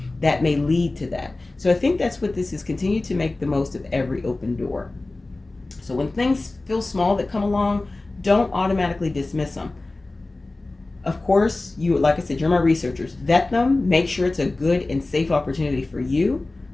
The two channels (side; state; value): right; quieter; 3.1 dB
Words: That may lead to that. So I think that's what this is. Continue to make the most of every open door. So when things feel small that come along, don't automatically dismiss them. Of course, you, like I said, you're my researchers. Vet them. Make sure it's a good and safe opportunity for you.